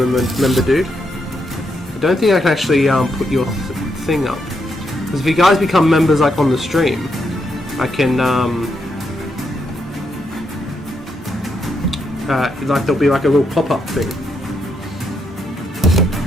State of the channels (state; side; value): normal; both; correlation 0.80